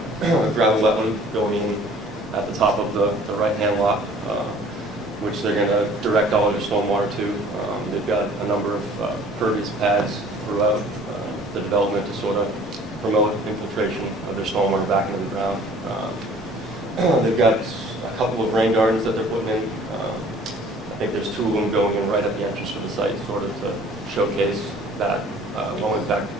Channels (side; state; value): both; normal; correlation 0.51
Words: gravel wetland going in at the top of the right-hand lot, which they're going to direct all of their stormwater to. They've got a number of pervious pads throughout the development to sort of promote infiltration of their stormwater back into the ground. They've got a couple of rain gardens that they're putting in. I think there's 2 of them going in right at the entrance to the site, sort of to showcase that low impact